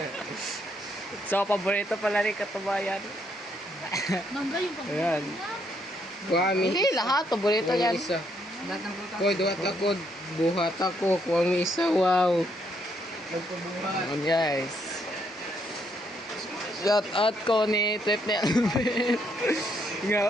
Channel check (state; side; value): normal; both; correlation 0.73